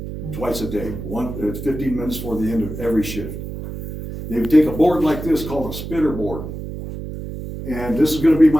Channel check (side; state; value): right; noise; hum, 8 dB below the sound